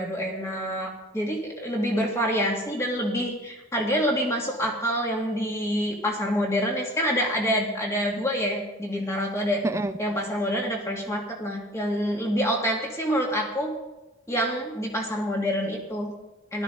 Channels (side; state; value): both; normal; correlation 0.46